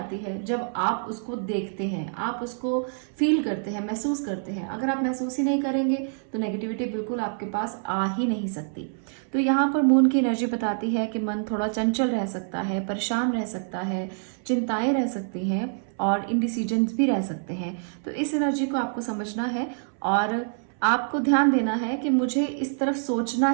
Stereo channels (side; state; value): left; silent; 61 dB below the other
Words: है जब आप उसको देखते हैं, आप उसको फील करते हैं, महसूस करते हैं। अगर आप महसूस ही नहीं करेंगे तो नेगेटिविटी बिल्कुल आपके पास आ ही नहीं सकती। तो यहाँ पर मून की एनर्जी बताती है कि मन थोड़ा चंचल रह सकता है, परेशान रह सकता है, चिंताएं रह सकती हैं और इनडिसीजन्स भी रह सकते हैं। तो इस एनर्जी को आपको समझना है और आपको ध्यान देना है कि मुझे इस तरफ सोचना